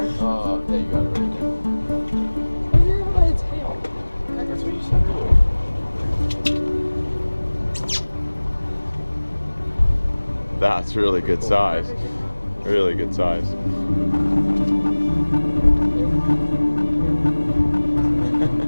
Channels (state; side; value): inverted; both; correlation -1.00